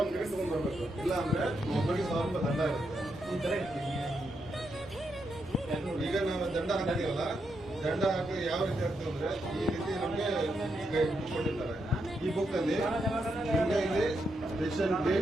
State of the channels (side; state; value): both; normal; correlation 0.82